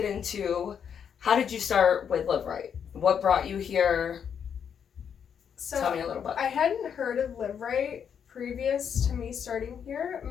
into how did you start with Live Right? What brought you here? So, Tell me a little bit. I hadn't heard of Live Rite previous to me starting here.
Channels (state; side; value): quieter; right; 7.7 dB